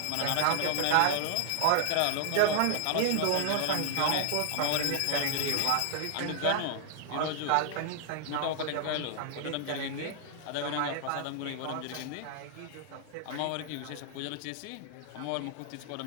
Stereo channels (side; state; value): both; different; correlation 0.00